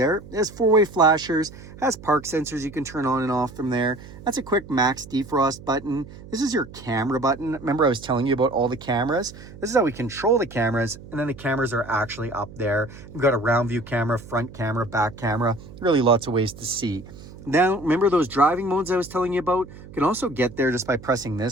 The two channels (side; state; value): right; noise; hum, 17 dB below the sound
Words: It has 4-way flashers, has park sensors you can turn on and off from there. That's a quick max defrost button. This is your camera button. Remember I was telling you about all the cameras? This is how we control the cameras, and then the cameras are actually up there. We've got a round view camera, front camera, back camera, really lots of ways to see. Now, remember those driving modes I was telling you about? You can also get there just by pressing